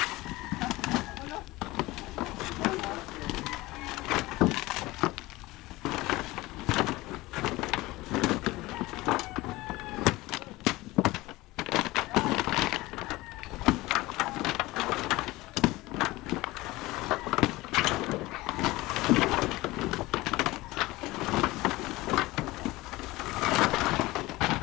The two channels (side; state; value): right; quieter; 19.9 dB